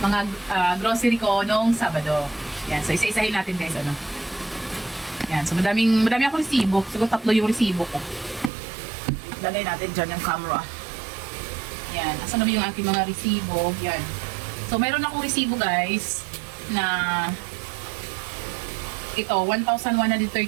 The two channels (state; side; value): drops out; left; at 8.5 s